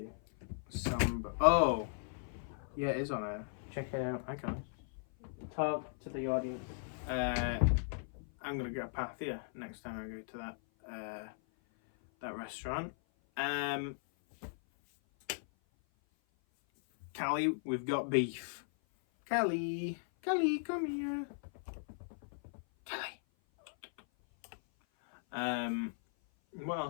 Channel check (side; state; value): right; silent; 53 dB below the other